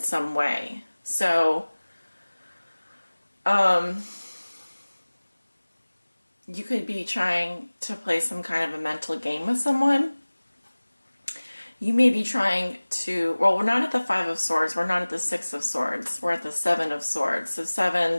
way. So you could be trying to play some kind of a mental game with someone. You may be trying to, well, we're not at the Five of Swords, we're not at the Six of Swords, we're at the Seven of Swords. So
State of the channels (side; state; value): both; inverted; correlation -1.00